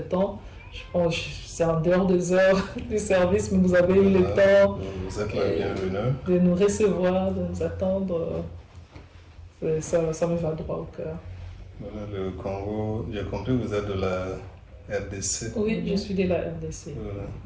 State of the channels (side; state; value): both; identical; correlation 1.00